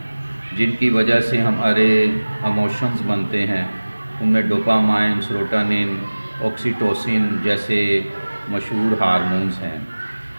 جن کی وجہ سے ہمارے ایموشنز بنتے ہیں۔ ان میں ڈوپامائن، سیروٹونن، آکسیٹوسن جیسے مشہور ہارمونز ہیں۔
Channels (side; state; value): both; inverted; correlation -1.00